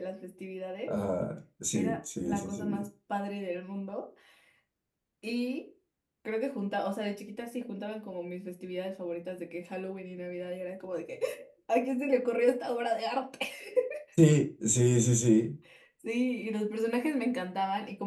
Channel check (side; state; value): both; identical; correlation 1.00